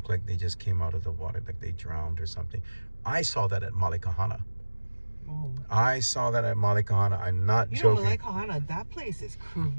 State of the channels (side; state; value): both; inverted; correlation -1.00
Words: like they just came out of the water, like they drowned or something. I saw that at Malikahana. I saw that at Malikahana. I'm not joking. Malikahana, that place is